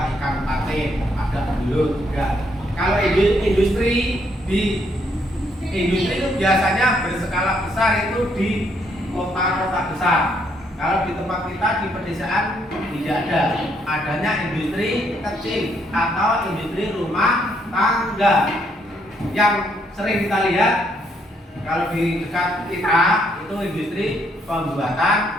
ikan patin, ada belut juga. Kalau industri itu biasanya berskala besar itu di kota-kota besar. Kalau di tempat kita di pedesaan tidak ada. Adanya industri kecil atau industri rumah tangga. Yang sering kita lihat kalau di dekat kita itu industri pembuatan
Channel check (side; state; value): both; normal; correlation 0.72